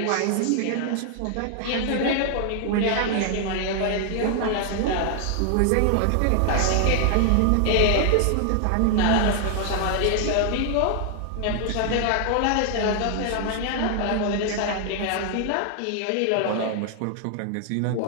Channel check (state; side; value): different; both; correlation 0.00